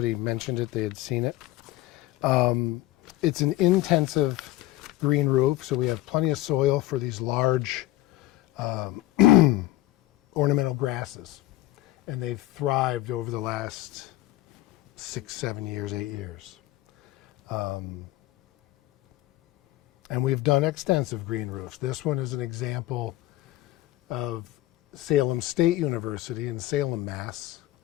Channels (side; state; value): right; quieter; 16.2 dB